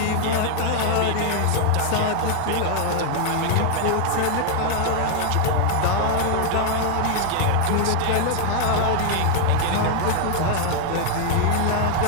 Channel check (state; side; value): different; both; correlation 0.00